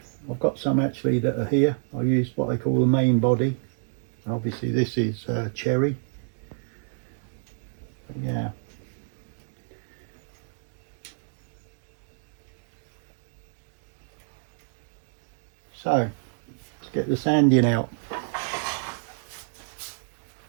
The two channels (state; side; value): silent; left; digital silence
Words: I've got some actually that are here. I used what I call the main body. Obviously this is cherry. Yeah. So, let's get the sanding out.